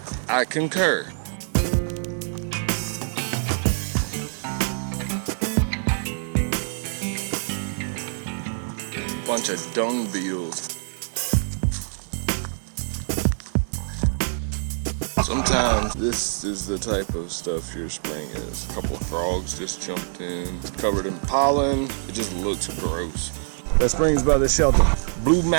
I concur. Bunch of dung beetles. Sometimes this is the type of stuff your spring is. A couple of frogs just jumped in, covered in pollen. It just looks gross. That spring's by the shelter. Blue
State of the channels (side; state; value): left; silent; digital silence